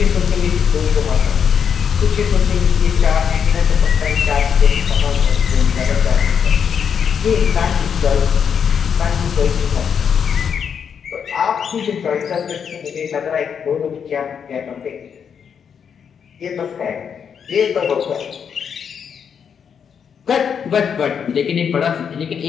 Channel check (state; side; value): quieter; right; 7.3 dB